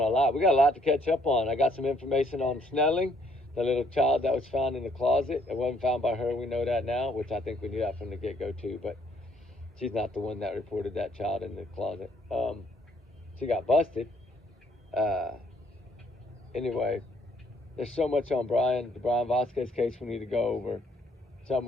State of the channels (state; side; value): normal; both; correlation 0.66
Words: a lot. We got a lot to catch up on. I got some information on Snelling, the little child that was found in the closet. It wasn't found by her. We know that now, which I think we knew that from the get-go too. But she's not the one that reported that child in the closet. She got busted. Anyway, there's so much on the Brian Vasquez case we need to go over.